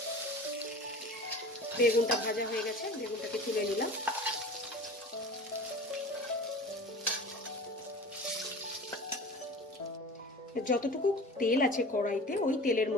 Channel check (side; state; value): both; normal; correlation 0.38